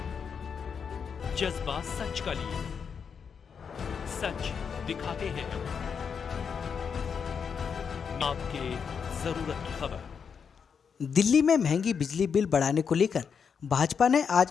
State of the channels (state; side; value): quieter; right; 6.5 dB